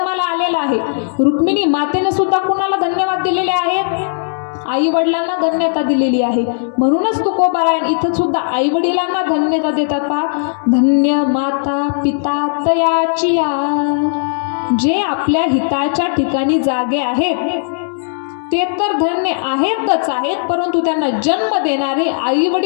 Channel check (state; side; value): silent; right; digital silence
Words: आलेलं आहे. रुक्मिणी मातेने सुद्धा कुणाला धन्यवाद दिलेले आहेत? आई वडिलांना धन्यता दिलेली आहे. म्हणूनच तुकोबराय इथं सुद्धा आई वडिलांना धन्यता देतात. पहा, धन्य माता पिता तयाचिया, जे आपल्या हिताच्या ठिकाणी जागे आहेत ते तर धन्य आहेतच आहेत, परंतु त्यांना जन्म देणारे आई